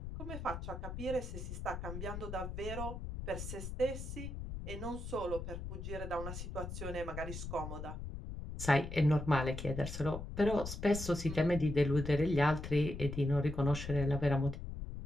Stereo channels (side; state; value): left; noise; rumble, 7 dB below the sound